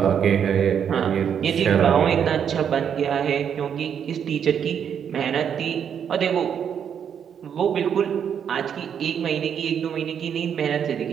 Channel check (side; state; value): left; quieter; 8.1 dB